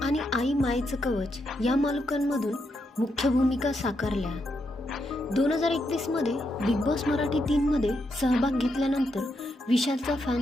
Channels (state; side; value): normal; both; correlation 0.81